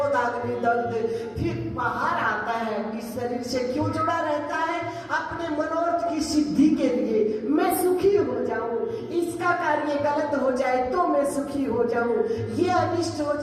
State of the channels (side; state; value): both; identical; correlation 1.00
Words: दग्ध। फिर बाहर आता है, इस शरीर से क्यों जुड़ा रहता है? अपने मनोरथ की सिद्धि के लिए। मैं सुखी हो जाऊं, इसका कार्य गलत हो जाए तो मैं सुखी हो जाऊं, ये अनिष्ट हो